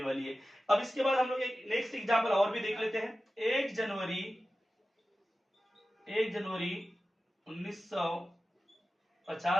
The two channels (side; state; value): both; normal; correlation 0.94